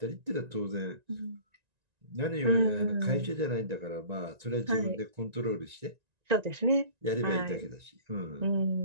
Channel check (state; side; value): late; left; 1.9 ms